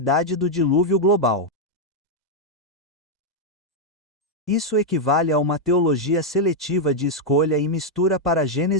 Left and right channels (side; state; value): both; normal; correlation -0.01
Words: do dilúvio global. Isso equivale a uma teologia seletiva de escolha e mistura para